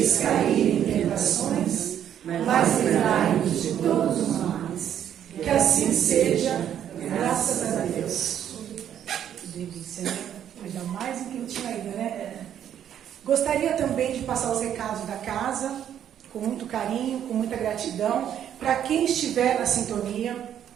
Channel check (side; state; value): left; quieter; 9.9 dB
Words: cair em tentações, mas livrai-nos de todos os males. Que assim seja, graças a Deus. Delícia, né? Ainda mais em que eu tinha ido, né? Gostaria também de passar os recados da casa, com muito carinho, com muita gratidão, para quem estiver na sintonia.